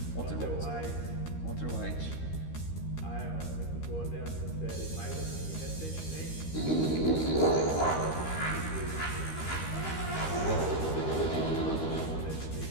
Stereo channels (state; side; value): late; right; 13 ms